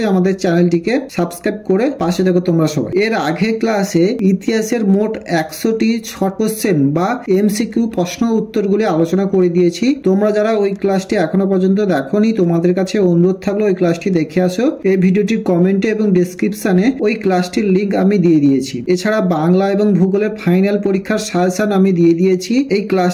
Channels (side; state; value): both; identical; correlation 1.00